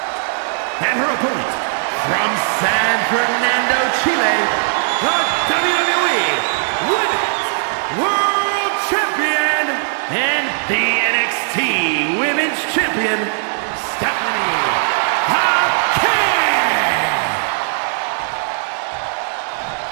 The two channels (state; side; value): silent; left; 67 dB below the other